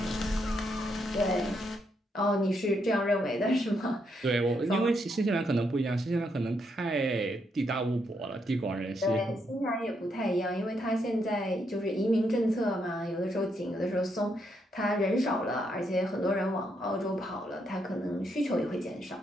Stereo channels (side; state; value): both; normal; correlation 0.78